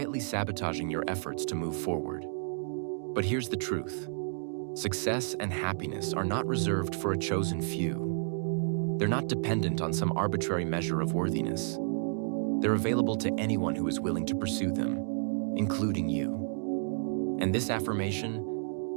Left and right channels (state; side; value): silent; left; digital silence